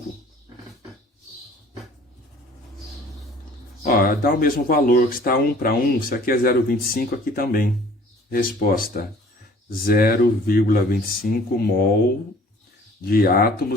Ó, dá o mesmo valor, que está 1 para 1, se aqui é 0,25, aqui também. Resposta, 0,25 mol de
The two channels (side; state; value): both; normal; correlation 0.52